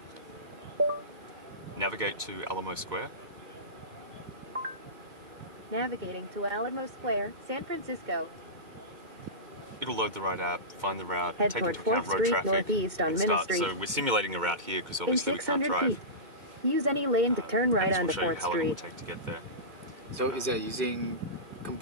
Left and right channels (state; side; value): late; left; 2.2 ms